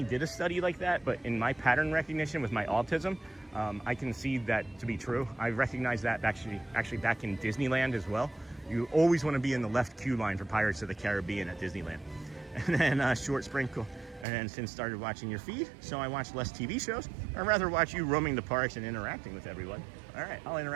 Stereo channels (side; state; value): left; drops out; at 14.2 s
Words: did a study like that, but in my pattern recognition with my autism, I can see that to be true. I recognize that actually back in Disneyland as well. You always want to be in the left queue line for Pirates of the Caribbean at Disneyland. And then short sprinkle. And then since started watching your feed, so I watch less TV shows. I'd rather watch you roaming the parks and interacting with everyone. All right, I'll